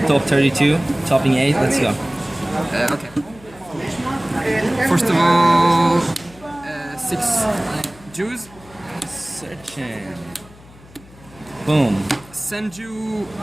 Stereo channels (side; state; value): left; noise; hum, 23 dB below the sound